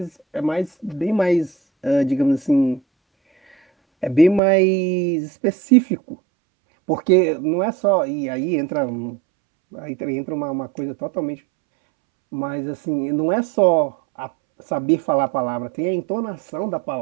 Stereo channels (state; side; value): drops out; left; at 4.4 s